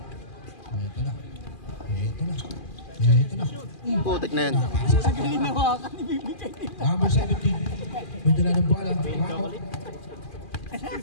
Ito na. Putik na yan. Number 17. May dala ng bola. Mako.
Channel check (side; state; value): right; late; 2.4 ms